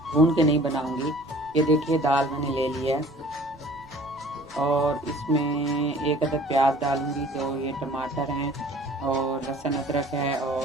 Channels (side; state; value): right; noise; rumble, 27 dB below the sound